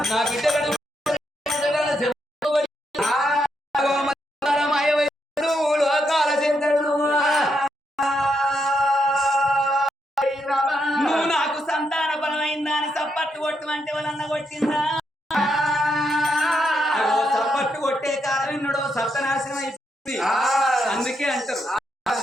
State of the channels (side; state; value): both; normal; correlation 0.80